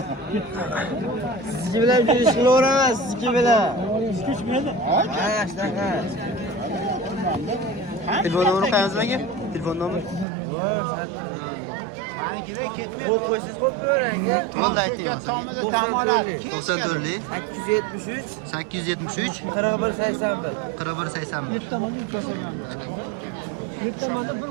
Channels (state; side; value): drops out; left; at 10.2 s